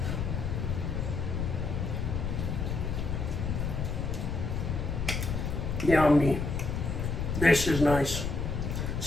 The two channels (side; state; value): left; noise; rumble, 1 dB below the sound